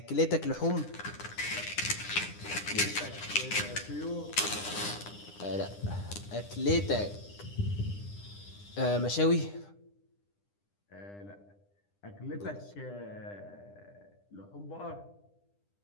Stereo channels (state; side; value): late; right; 9.9 ms